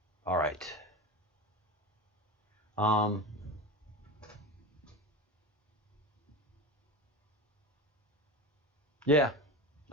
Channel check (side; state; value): both; normal; correlation 0.25